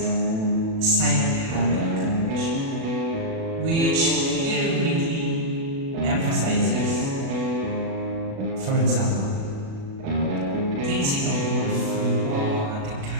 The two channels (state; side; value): late; left; 37 ms